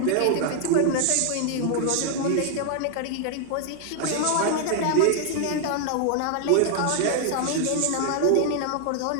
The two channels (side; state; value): both; different; correlation 0.00